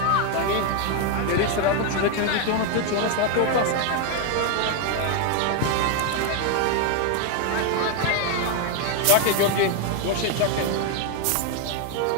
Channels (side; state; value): both; different; correlation 0.01